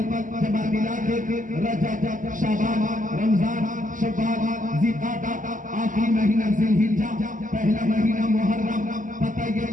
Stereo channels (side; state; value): left; late; 0.38 ms